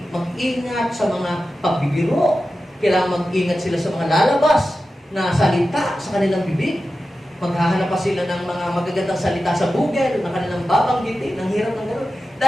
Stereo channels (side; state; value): both; normal; correlation 0.93